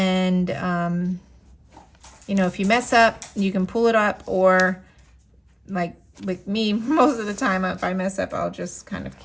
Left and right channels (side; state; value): both; identical; correlation 1.00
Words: you know, if you mess up, you can pull it up, or like with me, most of the time, if I mess up, I'll just kind of